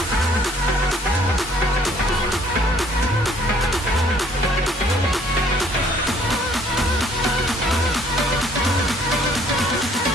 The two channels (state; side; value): normal; both; correlation 0.60